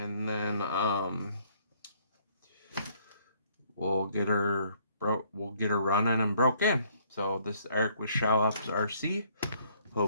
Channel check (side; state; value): both; inverted; correlation -0.64